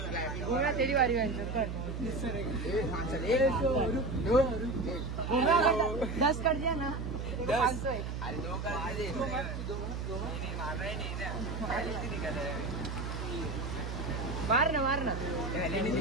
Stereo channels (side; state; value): right; noise; hum, 5 dB below the sound